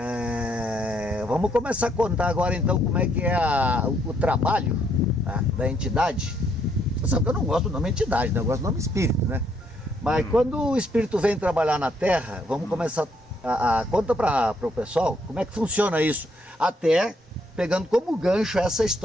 vamos começar a contar agora então como é que é o trabalho, tá, da entidade. Você sabe que eu não gosto do nome entidade, né? Eu gosto do nome espírito, né? Mas quando o espírito vem trabalhar na Terra, vamos começar conta para o pessoal como é que funciona isso, até pegando como gancho essa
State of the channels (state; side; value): normal; both; correlation 0.71